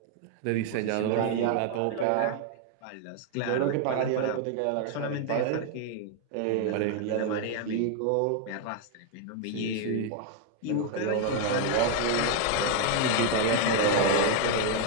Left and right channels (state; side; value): different; both; correlation 0.00